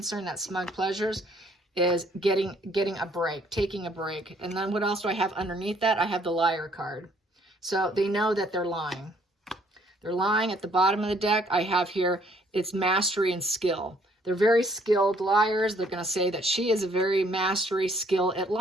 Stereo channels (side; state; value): both; normal; correlation 0.64